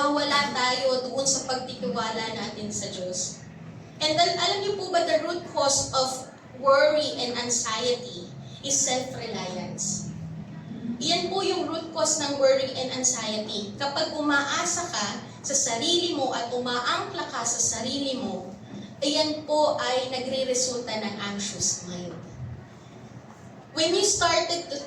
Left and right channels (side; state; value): both; identical; correlation 1.00